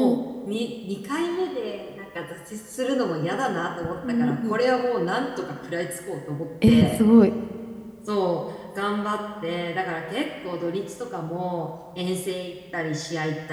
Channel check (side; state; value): both; identical; correlation 1.00